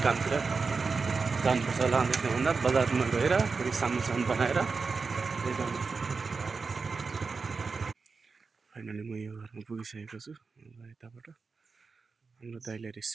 कामतिर जानुपर्छ होला। अन्त त्योभन्दा बजारमा गएर फेरि सामान बनाएर फाइनली म यो घरमा पुगिसकेको छु। यताबाट हाम्रो दाइलाई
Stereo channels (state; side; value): quieter; left; 4.6 dB